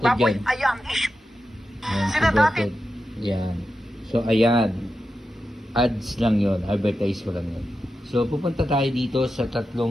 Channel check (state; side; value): normal; both; correlation 0.90